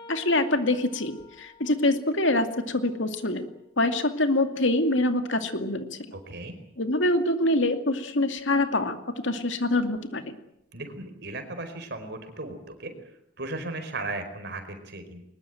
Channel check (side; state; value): both; normal; correlation 0.14